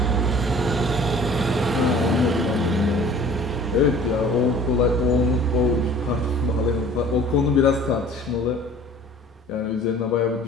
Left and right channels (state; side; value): normal; both; correlation 0.48